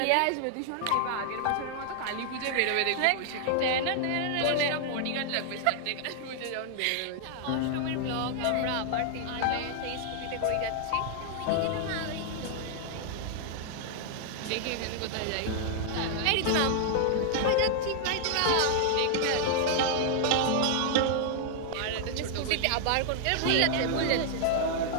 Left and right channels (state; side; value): different; both; correlation -0.01